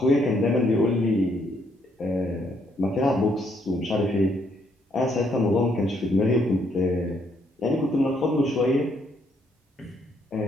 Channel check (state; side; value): normal; both; correlation 0.71